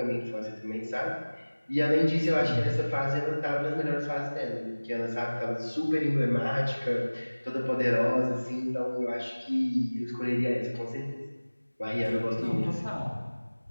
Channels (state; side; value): inverted; both; correlation -1.00